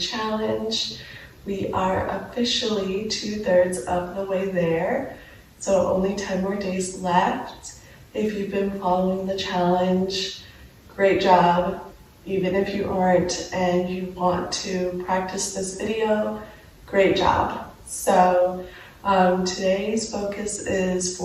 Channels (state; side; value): identical; both; correlation 1.00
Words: We are officially 2/3 of the way there, so only 10 more days left. If you've been following the challenge, great job. Even if you aren't and you want to practice this video, great job. So today's focus is